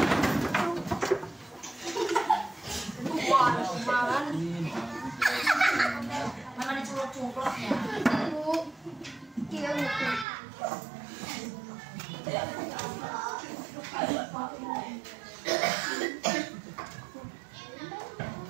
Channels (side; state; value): left; drops out; at 10.2 s